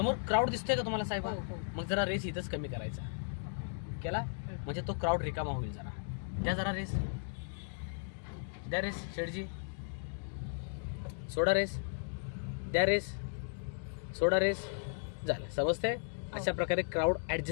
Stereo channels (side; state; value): right; silent; digital silence